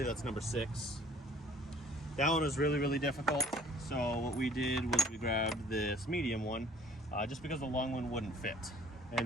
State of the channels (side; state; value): both; normal; correlation 0.54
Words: that's number 6. That one was really difficult. So what we did was we grabbed this medium one, just because the long one wouldn't fit.